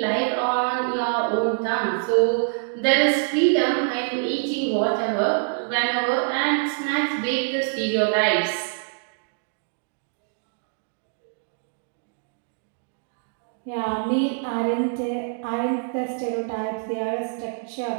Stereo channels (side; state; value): left; silent; digital silence